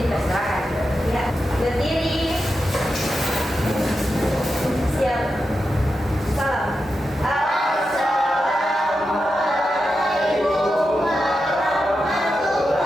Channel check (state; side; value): normal; both; correlation 0.89